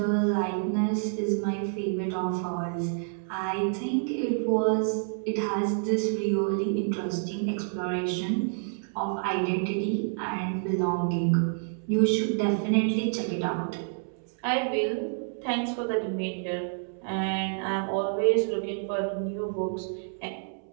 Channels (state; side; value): silent; left; 59 dB below the other